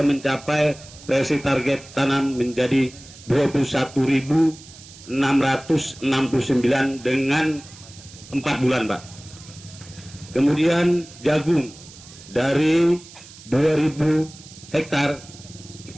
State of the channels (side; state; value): right; noise; hiss, 19 dB below the sound